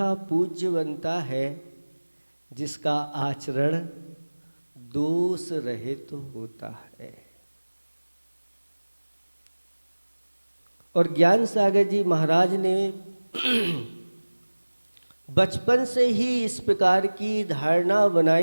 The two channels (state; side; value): inverted; both; correlation -1.00